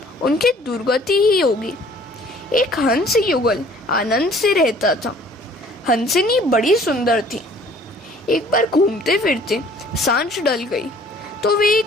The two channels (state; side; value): normal; both; correlation 0.54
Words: उनकी दुर्गति ही होगी। एक हंस युगल आनंद से रहता था। हंसिनी बड़ी सुंदर थी। एक बार घूमते फिरते सांझ ढल गई तो वे